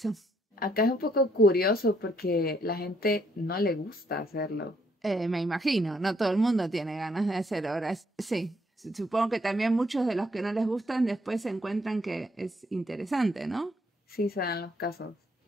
Acá es un poco curioso porque la gente no le gusta hacerlo. Me imagino, no todo el mundo tiene ganas de hacer horas. Sí, supongo que también muchos de los que no les gustan después se encuentran que es interesante, ¿no? Sí, se dan los casos.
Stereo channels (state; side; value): normal; both; correlation 0.71